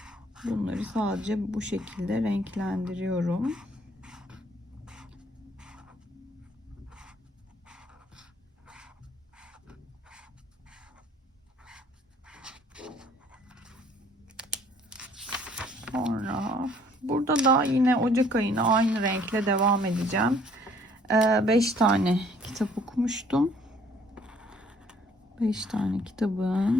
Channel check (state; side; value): normal; both; correlation 0.60